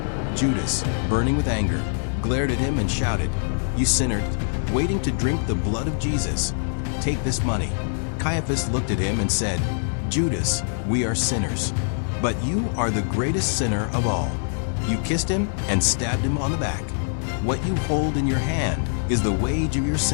Judas, burning with anger, glared at him and shouted, "You sinner, waiting to drink the blood of Jesus. Take this money." Caiaphas looked at him and said, "Judas, we are sinners, but you are the greatest sinner of all. You kissed him and stabbed him on the back. What you hold in your hand is the wage of your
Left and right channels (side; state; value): right; silent; 61 dB below the other